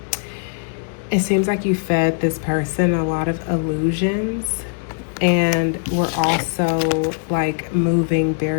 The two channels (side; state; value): right; silent; 65 dB below the other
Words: it seems like you fed this person a lot of illusions, and we're also like moving